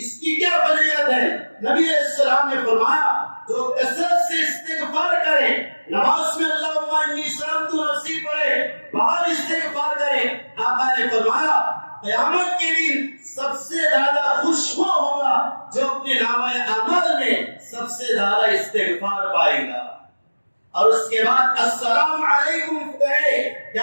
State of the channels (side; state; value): both; inverted; correlation -1.00